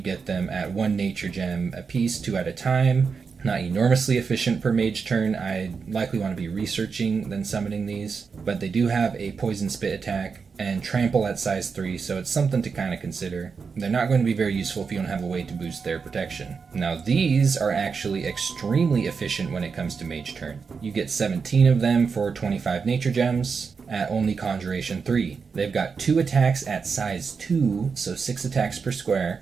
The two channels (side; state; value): left; quieter; 5.4 dB